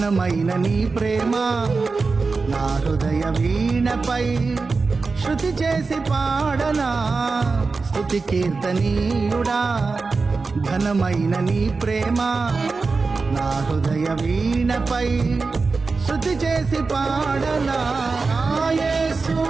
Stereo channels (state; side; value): quieter; left; 4.2 dB